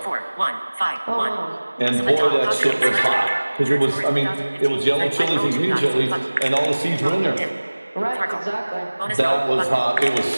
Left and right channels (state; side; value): inverted; both; correlation -1.00